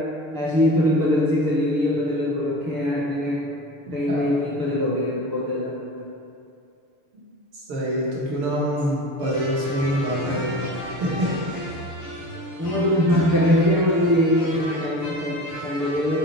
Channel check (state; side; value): late; left; 6.9 ms